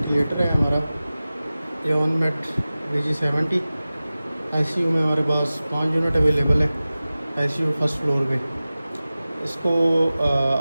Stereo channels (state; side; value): inverted; both; correlation -0.97